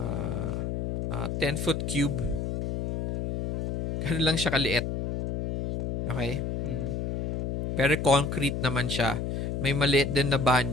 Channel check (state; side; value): noise; left; hum, 2 dB below the sound